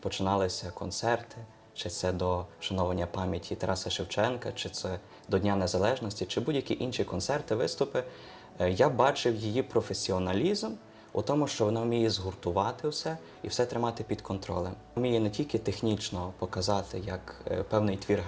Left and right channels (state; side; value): identical; both; correlation 1.00